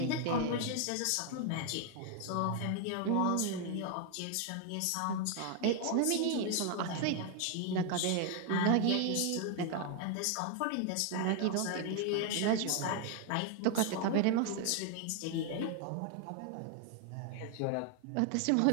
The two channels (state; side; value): different; both; correlation 0.00